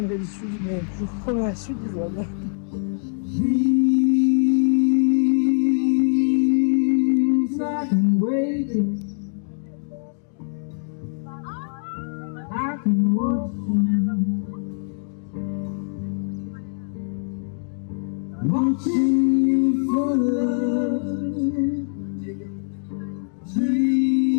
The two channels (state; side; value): silent; right; 61 dB below the other